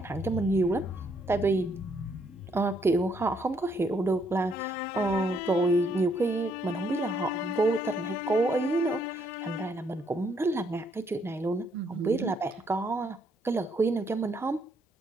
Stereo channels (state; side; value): normal; both; correlation 0.71